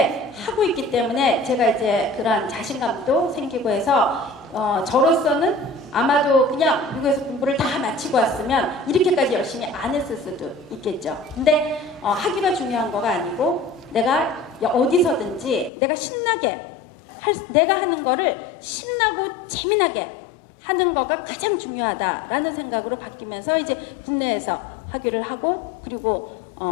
하고 있기 때문에 제가 이제 그러한 자신감도 생기고 해서 저로서는 아마도 그냥 미국에서 공부를 다 마치고 왔으면 이렇게까지 열심히 안 했을 수도 있겠죠. 근데 학위가 중요한 거가 아니고 내가 어디서든지 내가 신나게 내가 하는 거를 신나고 재미나게 하는 거가 가장 중요하다라는 생각으로 바뀌면서 이제 국내에서 학위를 하고 그리고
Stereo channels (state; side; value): drops out; right; at 15.7 s